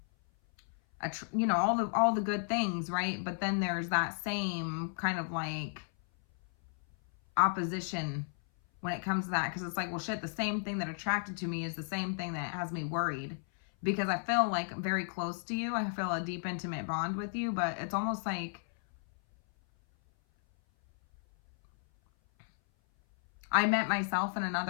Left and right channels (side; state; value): right; silent; 55 dB below the other